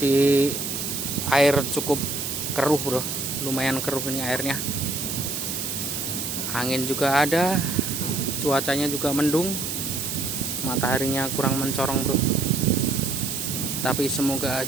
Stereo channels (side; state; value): right; noise; hiss, 4 dB below the sound